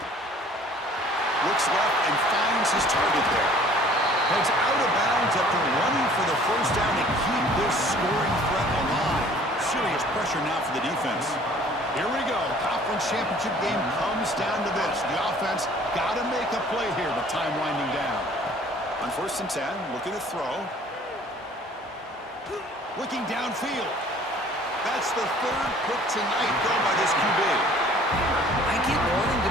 Looks left and finds his target there. Heads out of bounds after running for the first down to keep this scoring threat alive. Serious pressure now for the defense. Here we go. Conference championship game comes down to this. The offense got to make a play here with time winding down. On 1st and 10, looking to throw. Looking downfield. That's the third pick tonight thrown by this QB. I get wanting to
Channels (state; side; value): normal; both; correlation 0.53